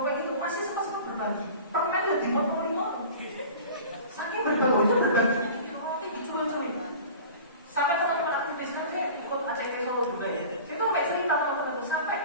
gitu, masih sempat berbagi. Permen udah dimotong-motong. Saking berbagi itu berbaginya bikin roti diculik-culik. Sampai teman-teman aktivis kan saya ikut ACT Solo juga ya. Itu sampai cerita teman-teman itu sampai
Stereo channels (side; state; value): both; inverted; correlation -0.40